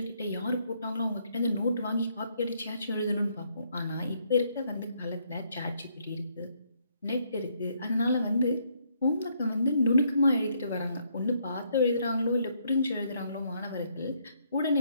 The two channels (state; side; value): inverted; both; correlation -0.71